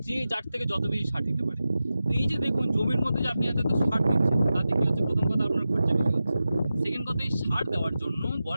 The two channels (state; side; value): inverted; both; correlation -0.93